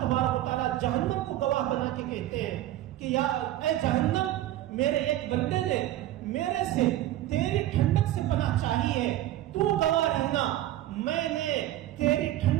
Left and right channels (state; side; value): quieter; left; 14.0 dB